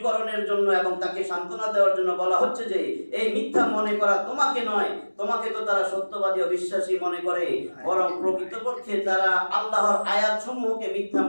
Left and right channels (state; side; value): inverted; both; correlation -1.00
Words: জন্য এবং তাকে সান্ত্বনা দেওয়ার জন্য বলা হচ্ছে যে এই মিথ্যা মনে করা তোমাকে নয়, তোমাকে তো তারা সত্যবাদী ও বিশ্বাসী মনে করে, বরং প্রকৃতপক্ষে তারা আল্লাহর আয়াতসমূহকে মিথ্যা